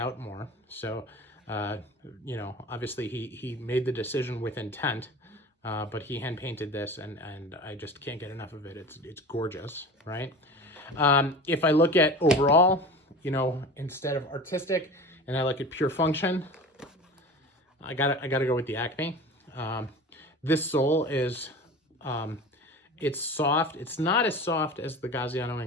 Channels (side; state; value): both; normal; correlation 0.35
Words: more. So, obviously he made the decision with intent, but he hand painted this, and I just can't get enough of it. It's gorgeous, right? If I look at overall, instead of artistic, and I look at pure function, I gotta go with the Acme. This sole is, it's soft. It's not as soft as the Gaziano